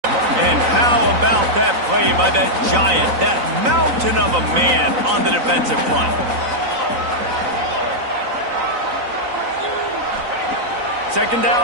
And how about that play by that giant, that mountain of a man on the defensive front? Second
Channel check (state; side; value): late; left; 3.9 ms